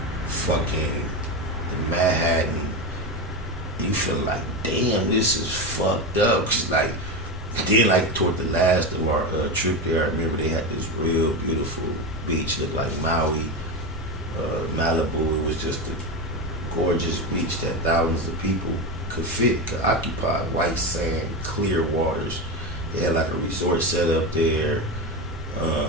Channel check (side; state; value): both; normal; correlation 0.17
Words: fucking Manhattan. You feel like, damn, this is fucked up. Cause like, then like toward the last of our trip there, I remember they had this real beautiful beach, looked like Maui. Malibu, it was just a gorgeous beach that thousands of people could occupy. White sand, clear waters. They had like a resort set up there,